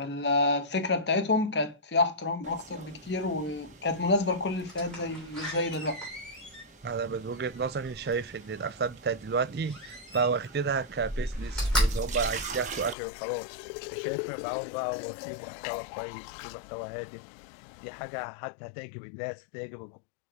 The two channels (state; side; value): drops out; right; at 13.0 s